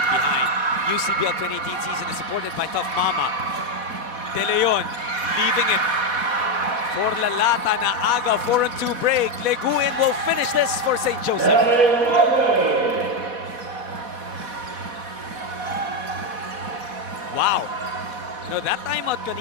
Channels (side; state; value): left; late; 4.1 ms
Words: behind. UCBL 2018 season is supported by Tough Mama. De Leon leaving it for Lalata na aga, 4-2 break. Leguin will finish this for St. Joseph. Wow. You know, that timeout